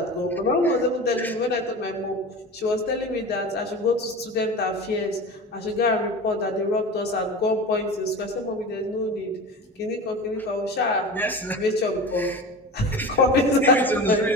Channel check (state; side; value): normal; both; correlation 0.32